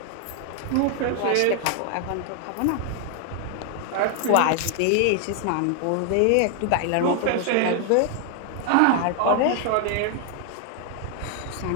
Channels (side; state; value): both; different; correlation 0.00